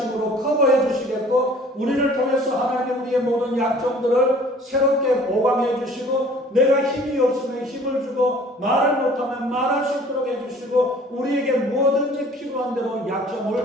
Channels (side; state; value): both; normal; correlation 0.51